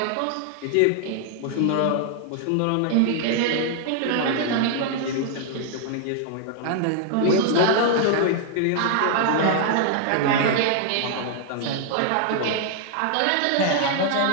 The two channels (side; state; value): both; different; correlation 0.00